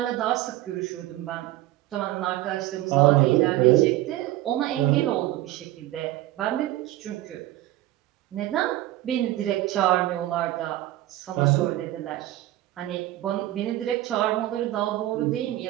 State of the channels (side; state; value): left; quieter; 15.5 dB